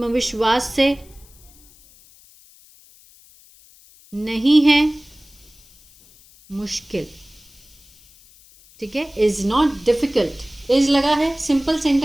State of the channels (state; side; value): noise; left; hiss, 26 dB below the sound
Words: से नहीं है मुश्किल। ठीक है, इज़ नॉट डिफ़िकल्ट, इज़ लगा है, सिंपल